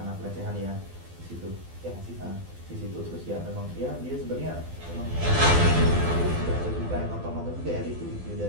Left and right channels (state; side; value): late; left; 12 ms